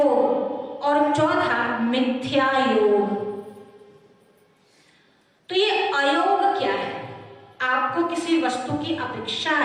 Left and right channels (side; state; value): both; identical; correlation 1.00